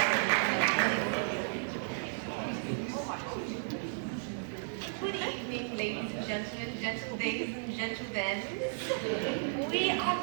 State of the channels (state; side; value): silent; left; 55 dB below the other